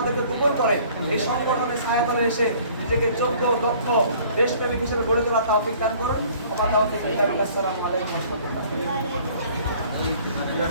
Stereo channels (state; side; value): inverted; both; correlation -0.54